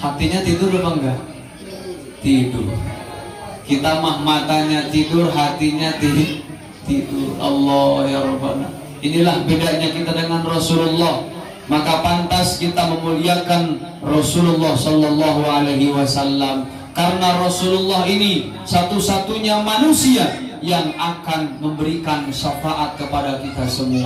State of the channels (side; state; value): both; identical; correlation 1.00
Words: tidur apa enggak? Tidur. Kita mah matanya tidur, hatinya tidur. Allah ya Rabbana. Inilah bedanya kita dengan Rasulullah. Maka pantas kita memuliakan Rasulullah Sallallahu Alaihi Wasallam, karena Rasulullah ini satu-satunya manusia yang akan memberikan syafaat kepada kita